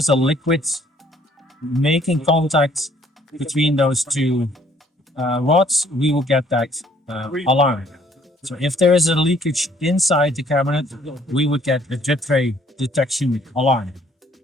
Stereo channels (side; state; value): both; normal; correlation 0.62